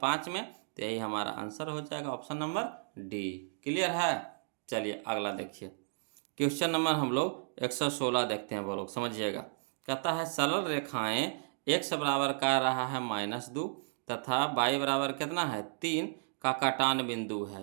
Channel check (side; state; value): left; silent; digital silence